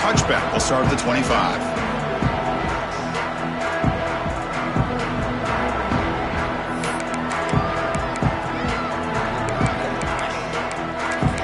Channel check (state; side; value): identical; both; correlation 1.00